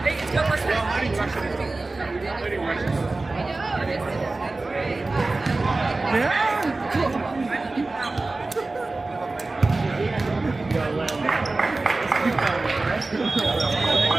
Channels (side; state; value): left; quieter; 3.3 dB